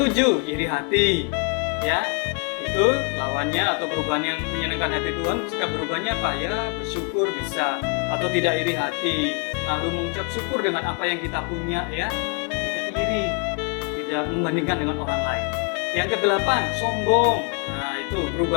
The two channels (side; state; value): right; quieter; 35.1 dB